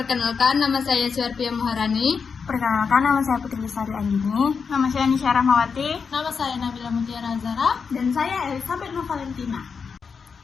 nama saya Suarpia Muharani. Perkenalkan, nama saya Putri Lestari Andini. Nama saya Nisha Rahmawati. Nama saya Nabila Mutiara Zara. Dan saya Elizabeth Novalentina.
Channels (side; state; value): right; quieter; 5.7 dB